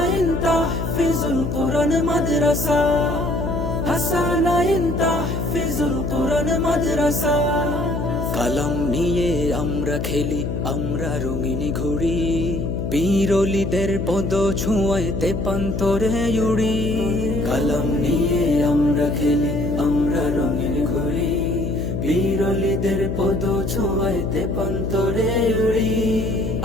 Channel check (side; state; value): left; noise; hum, 2 dB below the sound